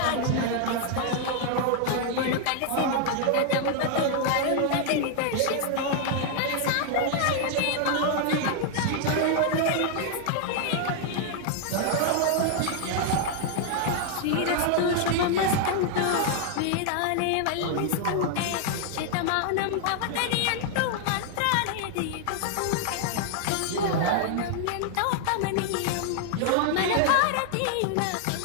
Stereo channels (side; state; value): both; different; correlation 0.00